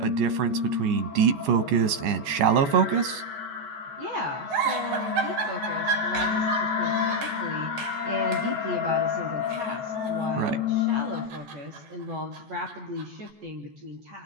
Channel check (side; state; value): left; late; 14 ms